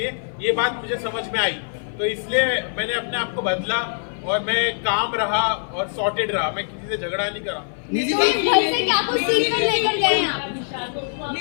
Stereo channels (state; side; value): silent; right; 56 dB below the other